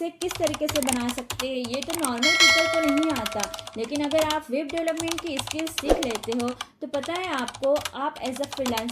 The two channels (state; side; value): identical; both; correlation 1.00